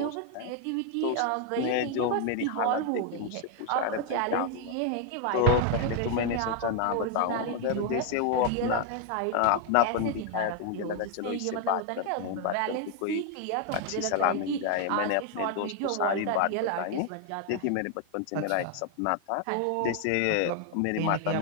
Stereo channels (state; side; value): different; both; correlation 0.00